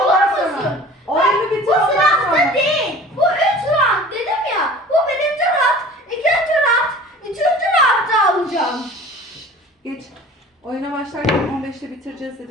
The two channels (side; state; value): both; normal; correlation 0.43